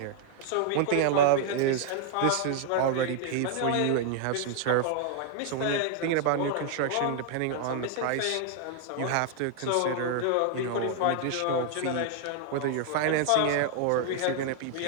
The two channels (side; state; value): both; different; correlation 0.00